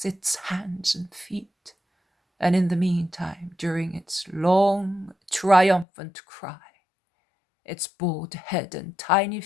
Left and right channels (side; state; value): right; drops out; at 5.9 s